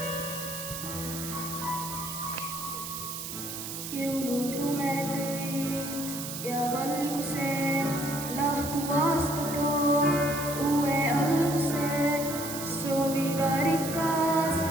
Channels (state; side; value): noise; right; hiss, 7 dB below the sound